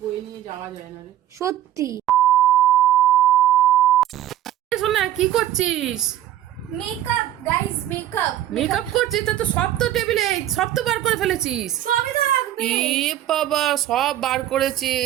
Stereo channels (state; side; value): quieter; left; 12.5 dB